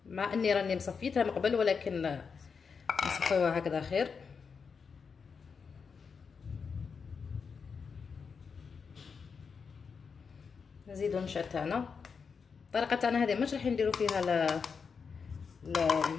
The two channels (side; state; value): right; quieter; 5.7 dB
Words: مع اني راني مصفيتها من قبل ولكن نصفيوها هكذا خير. نزيدوا النشا تاعنا. الطريقه تاعنا هذه مش راح نديروا فيها